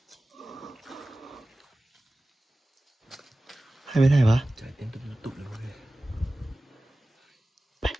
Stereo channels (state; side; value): normal; both; correlation 0.96